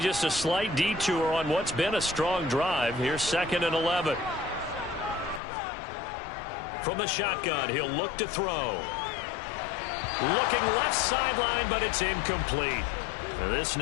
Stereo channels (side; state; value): right; drops out; at 5.4 s